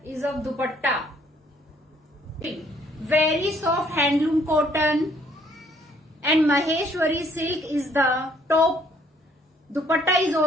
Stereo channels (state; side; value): normal; both; correlation 0.64